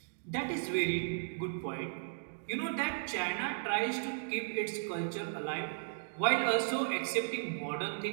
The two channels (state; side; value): silent; left; digital silence